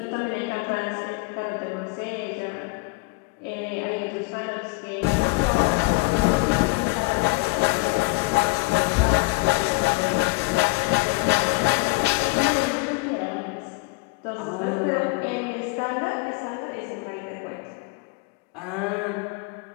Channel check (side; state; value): right; quieter; 26.2 dB